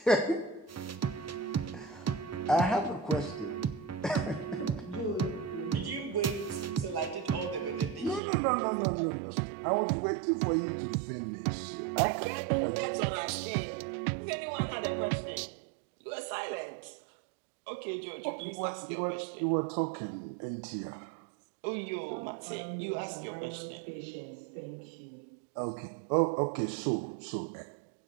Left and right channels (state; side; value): drops out; left; at 8.2 s